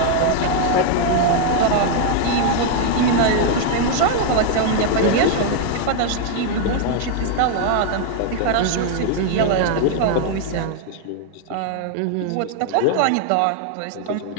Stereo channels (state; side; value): different; both; correlation 0.00